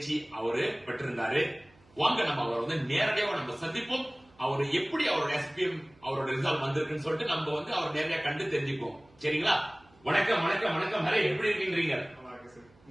அவரு பெற்றிருந்தாரு. வாங்க நம்ம அவரை நேரடியாக நம்ம சந்திப்போம். அவரு எப்படி அவரோட SPM அவரோட ரிசல்ட் வந்திருக்குன்னு சொல்லிட்டு நம்ம அவர் நேரடியா கண்டு தெரிஞ்சுப்போம். சரிங்களா? வணக்கம் வணக்கம் வணக்கம். ஹரே, எப்படி இருக்கீங்க?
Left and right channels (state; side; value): noise; right; hum, 29 dB below the sound